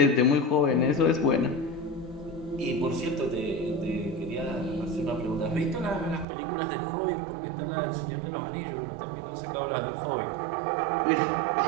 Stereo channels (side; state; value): left; drops out; at 6.2 s